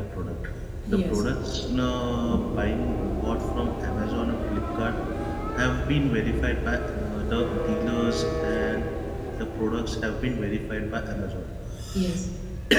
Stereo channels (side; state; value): both; identical; correlation 1.00